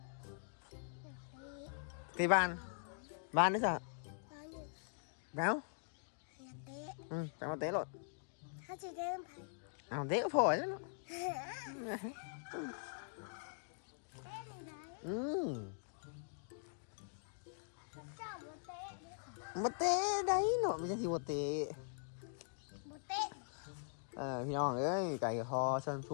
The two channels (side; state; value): right; silent; digital silence